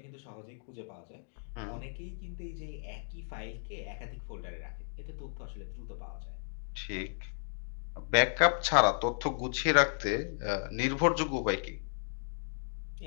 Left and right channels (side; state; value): right; silent; digital silence